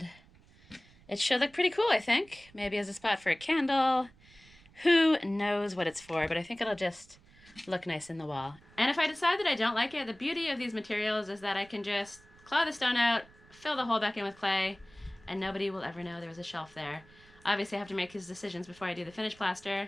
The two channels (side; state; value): right; noise; rumble, 26 dB below the sound